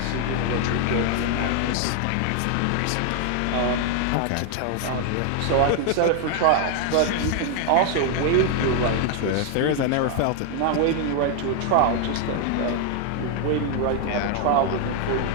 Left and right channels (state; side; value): different; both; correlation 0.00